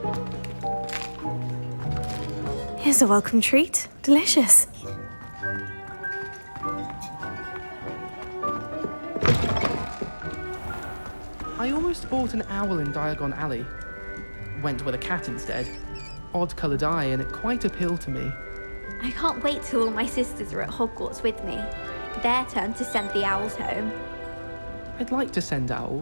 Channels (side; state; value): both; inverted; correlation -1.00